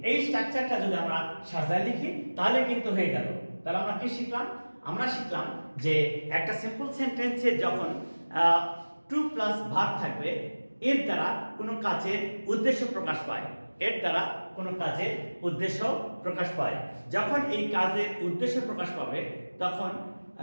এই স্ট্রাকচারটা যদি আমরা সাজায় লিখি তাহলে কিন্তু হয়ে গেল। তাহলে আমরা কি শিখলাম? আমরা শিখলাম যে একটা সিম্পল সেন্টেন্সে যখন টু প্লাস ভার্ব থাকবে এর দ্বারা কোনো কাজের উদ্দেশ্য প্রকাশ পায়। যখন এই কাজের উদ্দেশ্য প্রকাশ পাবে তখন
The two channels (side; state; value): both; inverted; correlation -1.00